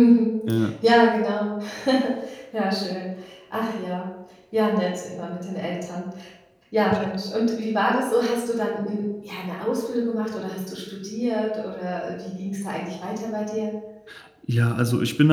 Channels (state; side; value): identical; both; correlation 1.00